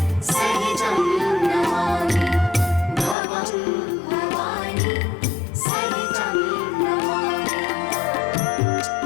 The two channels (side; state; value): right; drops out; at 3.2 s